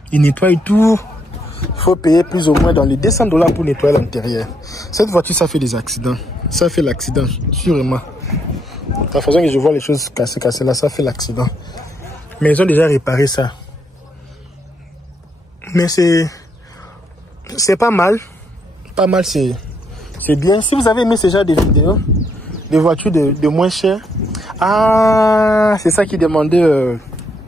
Il nettoie tout. Il faut payer plus ou moins dans les $200 pour nettoyer l'intérieur. Cette voiture, ça fait des accidents. Ça fait l'accident, sûrement. La façon que je vois les choses cassées là, ça fait l'accident. Mais ils ont déjà réparé ça. Mais c'est pas mal. Pas mal, c'est bien. Si vous avez aimé ce genre de vidéos, des voitures de moins chères. Ah, c'est ça qu'ils demandaient.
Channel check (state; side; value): normal; both; correlation 0.74